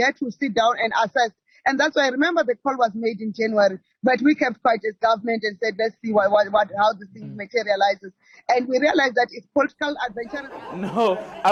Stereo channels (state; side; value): identical; both; correlation 1.00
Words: to sit down and assess. And that's why I remember the call was made in January, but we kept quiet as government and said, let's see how this thing materializes. And we realized that it's political adventure. No, I